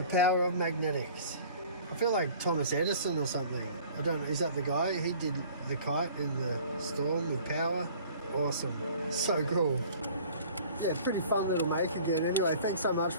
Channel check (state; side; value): inverted; both; correlation -0.49